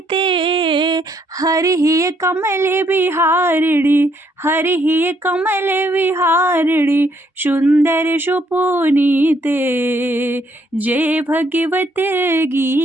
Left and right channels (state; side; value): normal; both; correlation 0.70